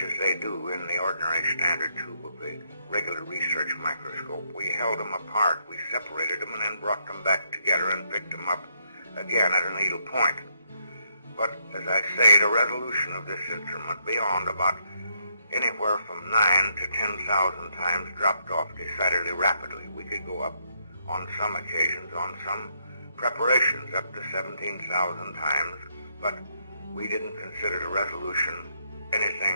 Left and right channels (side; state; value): both; inverted; correlation -0.75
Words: they do in the ordinary standard tube of the regular research microscope, we held them apart, we separated them, and then brought them back together and picked them up again at a needle point. But, as I say, the resolution of this instrument beyond about anywhere from 9 to 10,000 times dropped off decidedly rapidly. We could go up on some occasions, on some preparations, up to 17,000 times, but we didn't consider the resolution